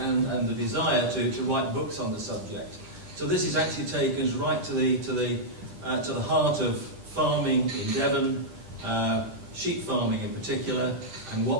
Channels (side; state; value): left; late; 10 ms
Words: the desire to write books on the subject. So this is actually taken us right to the heart of farming in Devon, sheep farming in particular, and